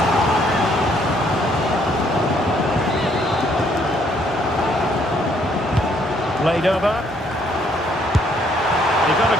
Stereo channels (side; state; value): both; normal; correlation 0.67